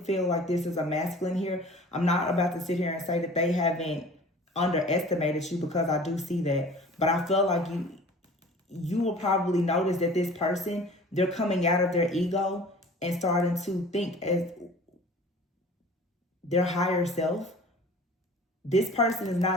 like this is a masculine here. I'm not about to sit here and say that they haven't underestimated you, because I do see that. But I feel like you will probably notice that this person, they're coming out of their ego and starting to think as their higher self. This person is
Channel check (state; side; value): normal; both; correlation 0.44